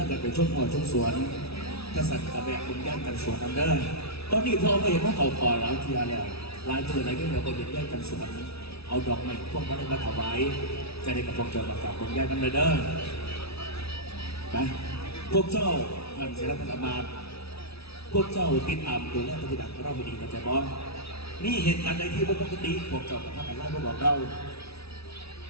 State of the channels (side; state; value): right; late; 0.78 ms